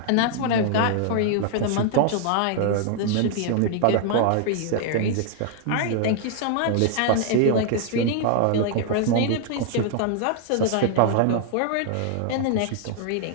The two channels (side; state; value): both; different; correlation 0.00